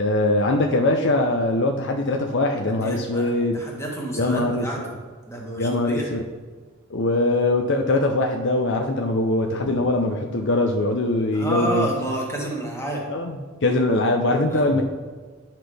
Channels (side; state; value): both; normal; correlation 0.11